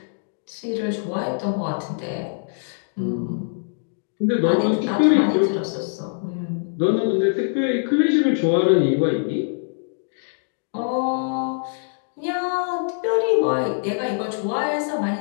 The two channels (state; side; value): silent; right; digital silence